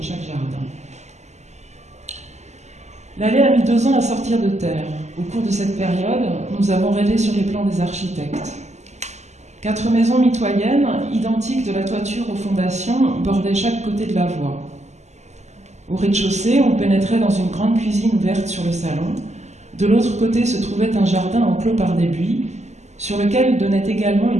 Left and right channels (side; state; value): left; late; 0.33 ms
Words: chaque jardin. L'allée a mis 2 ans à sortir de terre. Au cours de cette période, nous avons rêvé sur les plans des architectes. 4 maisons mitoyennes, identiques de la toiture aux fondations, bordaient chaque côté de la voie. Au rez-de-chaussée, on pénétrait dans une grande cuisine ouverte sur le salon. De l'autre côté se trouvait un jardin enclos par des buis, sur lequel donnait également